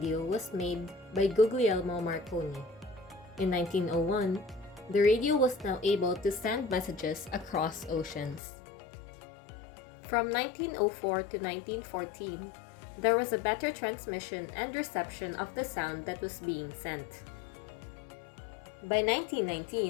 was made by Guglielmo Marconi. In 1901, the radio was now able to send messages across oceans. From 1904 to 1914, there was a better transmission and reception of the sound that was being sent. By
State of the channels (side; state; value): right; drops out; at 8.4 s